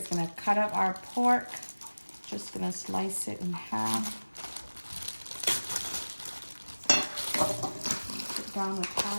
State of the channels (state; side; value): inverted; both; correlation -1.00